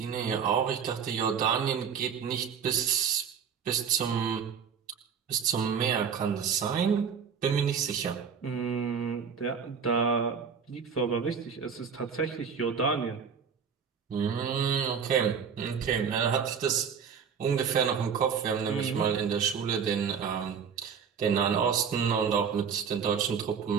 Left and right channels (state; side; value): quieter; left; 6.8 dB